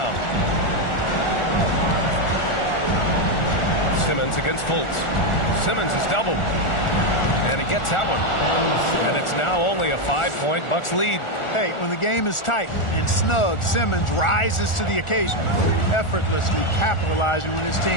Simmons against Fultz. Simmons is doubled. And he gets that one. And it's now only a 5-point Bucks lead. Hey, when the game is tight and snug, Simmons rises to the occasion, effortlessly capitalizing when his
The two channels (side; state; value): right; late; 1.4 ms